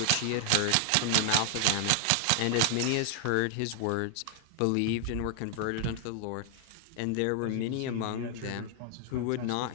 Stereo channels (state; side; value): different; both; correlation 0.00